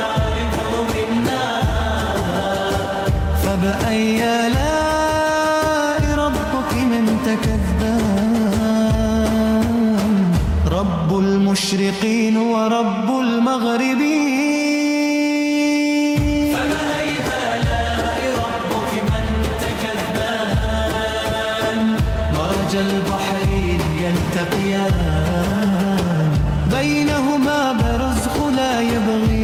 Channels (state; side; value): identical; both; correlation 1.00